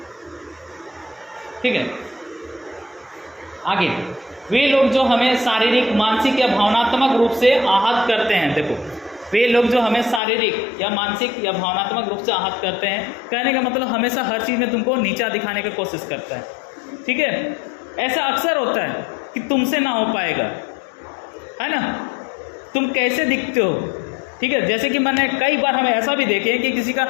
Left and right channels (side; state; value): right; drops out; at 10.2 s